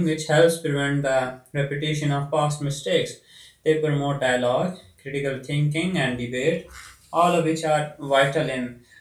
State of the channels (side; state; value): both; identical; correlation 1.00